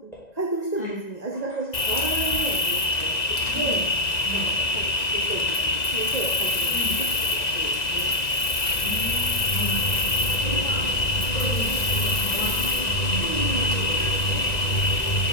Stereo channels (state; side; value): late; right; 1.9 ms